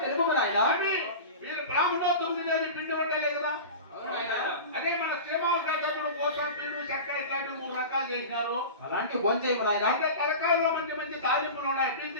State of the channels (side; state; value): both; inverted; correlation -0.31